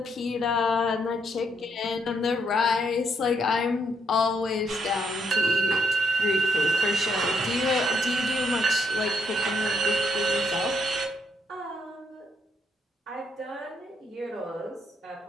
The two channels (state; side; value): normal; both; correlation 0.74